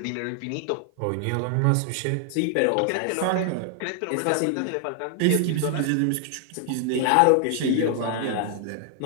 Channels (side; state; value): both; different; correlation 0.00